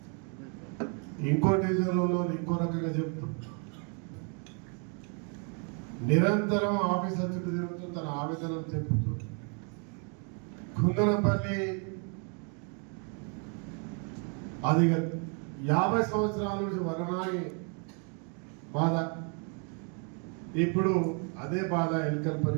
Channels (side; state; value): left; quieter; 38.8 dB